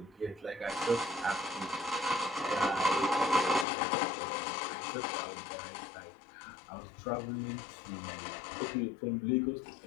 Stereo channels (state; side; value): drops out; right; at 3.7 s